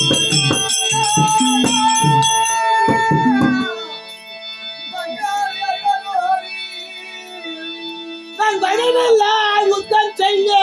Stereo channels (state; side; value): identical; both; correlation 1.00